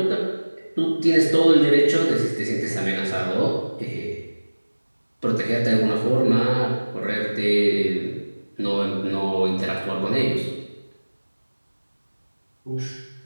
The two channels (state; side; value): inverted; both; correlation -1.00